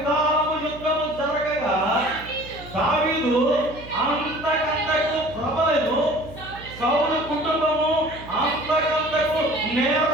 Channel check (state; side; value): noise; right; hum, 16 dB below the sound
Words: యుద్ధము జరగగా దావీదు అంతకంతకు ప్రబలెను. సౌలు కుటుంబము అంతకంతకు